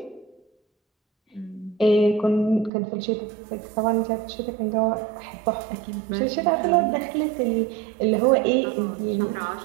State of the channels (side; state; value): left; drops out; at 2.7 s